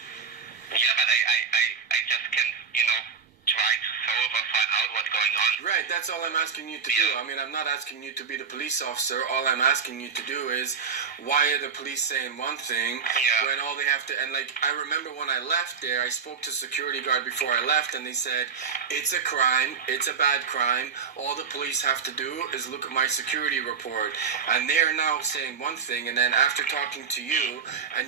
Yeah, but I just can try to solve or find out what's going on. Right, that's all I'm asking you to do. I mean, I'm not asking you to be the police officer. All I'm asking you to do is, why are the police saying one thing when all they have to, and like, I remember when I left there, I spoke to security guard before I left, and they said, it's a crime, it's a bad crime, all the police have to do is look at my security report. And they're now saying one thing, and then after talking to you,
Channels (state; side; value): quieter; left; 6.1 dB